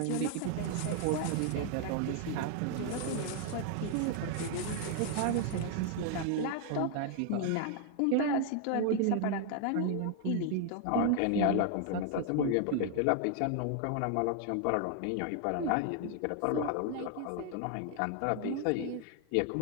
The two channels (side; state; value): both; different; correlation 0.00